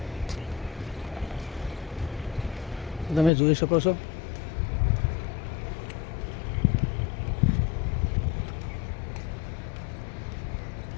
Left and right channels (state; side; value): drops out; right; at 3.3 s